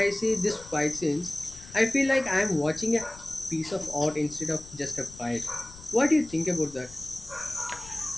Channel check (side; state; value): left; noise; rumble, 19 dB below the sound